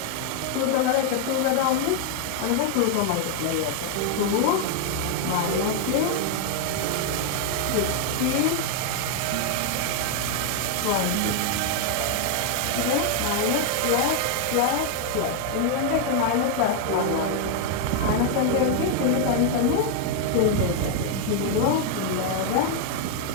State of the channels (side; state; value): both; different; correlation 0.00